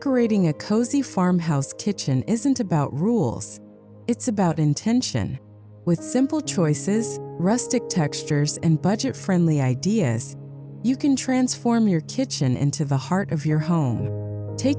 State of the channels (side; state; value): both; identical; correlation 1.00